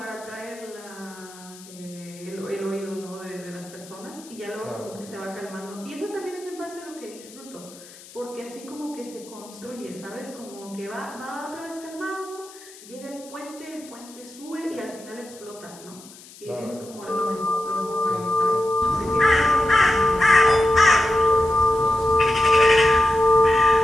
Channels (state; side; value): noise; left; hiss, 20 dB below the sound